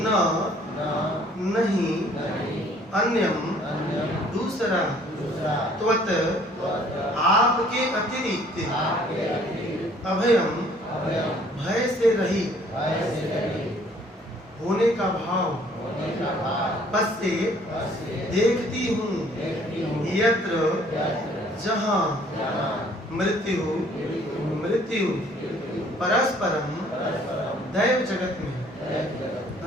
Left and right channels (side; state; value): both; normal; correlation 0.58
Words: नहीं अन्यम दूसरा त्वत आपके अतिरिक्त अभयम भय से रहित होने का भाव पश्चे देखती हूँ यत्र जहाँ मृत्यु परस्परम दैव जगत में।